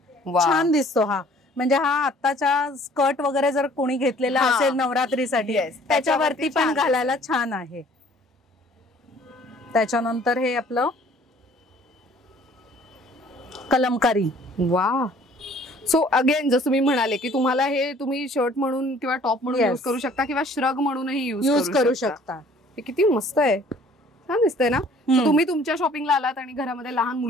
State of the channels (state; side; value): normal; both; correlation 0.55